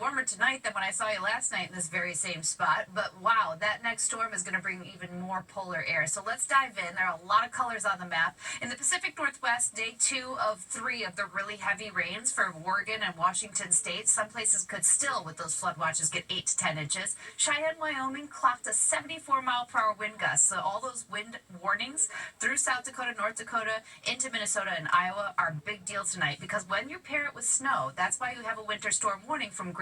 warmer tonight than when I saw you last night in this very same spot. But wow, that next storm is going to bring even more polar air. So let's dive in. There are a lot of colors on the map. In the Pacific Northwest, day 2 of 3 of the really heavy rains for Oregon and Washington state. Some places could still, with those flood watches, get 8 to 10 inches. Cheyenne, Wyoming clocked a 74-mile-per-hour wind gust. So all those wind warnings through South Dakota, North Dakota, into Minnesota and Iowa are a big deal tonight, because when you pair it with snow, That's why you have a winter storm warning from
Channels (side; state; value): both; identical; correlation 1.00